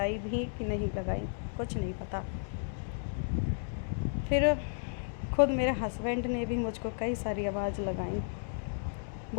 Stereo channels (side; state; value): right; silent; digital silence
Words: भी कि नहीं लगाई, कुछ नहीं पता। फिर खुद मेरे हस्बैंड ने भी मुझको कई सारी आवाज़ लगाई,